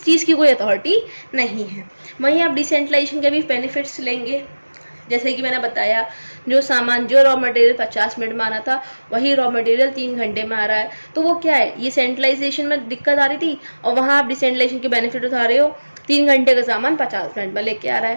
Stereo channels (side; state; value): both; inverted; correlation -1.00